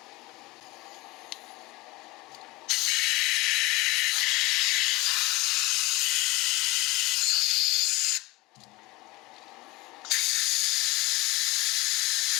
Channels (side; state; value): right; quieter; 21.7 dB